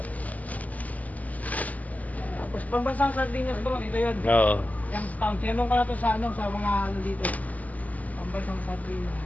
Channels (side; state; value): right; late; 0.076 ms